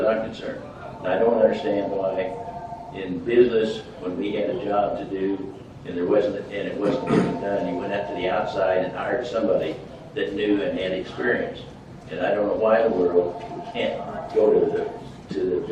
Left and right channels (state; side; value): identical; both; correlation 1.00